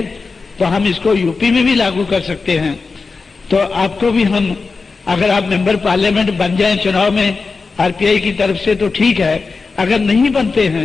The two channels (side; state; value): right; quieter; 4.3 dB